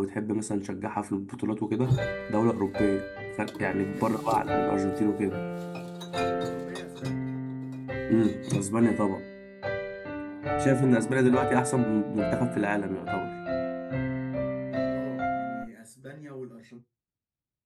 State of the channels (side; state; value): both; identical; correlation 1.00